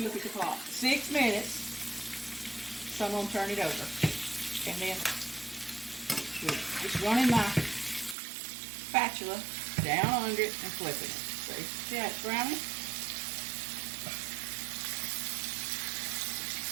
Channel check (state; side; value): drops out; left; at 8.2 s